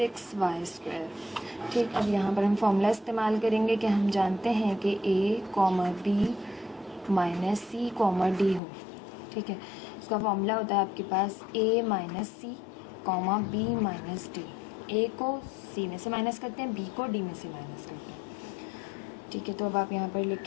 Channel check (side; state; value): right; drops out; at 8.6 s